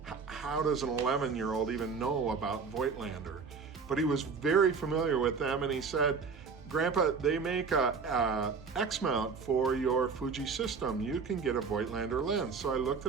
How does an 11-year-old even know about Voitlander? But he was very familiar with them, and he said, "Grandpa, they make a X mount for your Fuji system. You can get a Voitlander lens." So I looked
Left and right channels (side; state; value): left; quieter; 5.3 dB